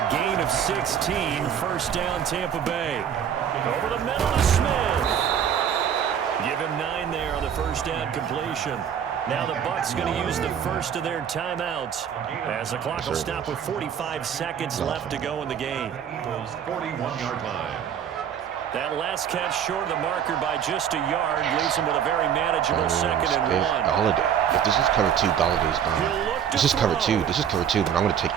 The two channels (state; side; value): quieter; left; 8.6 dB